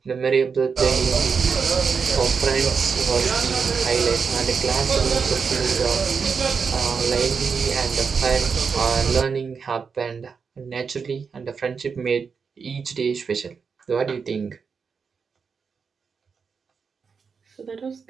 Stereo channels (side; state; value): left; quieter; 5.7 dB